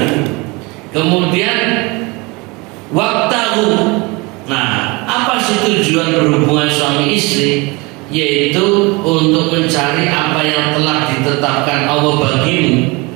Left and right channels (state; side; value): quieter; left; 25.9 dB